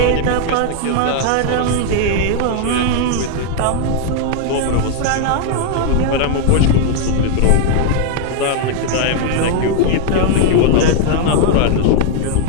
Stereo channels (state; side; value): different; both; correlation 0.00